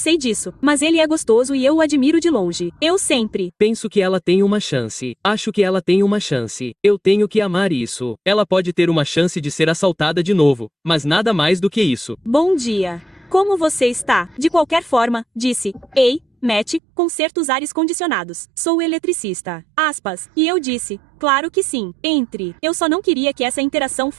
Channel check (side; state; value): left; drops out; at 16.8 s